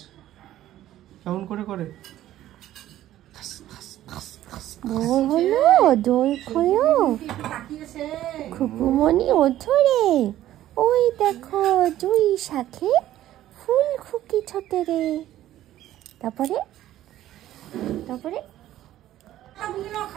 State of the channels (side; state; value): left; quieter; 13.4 dB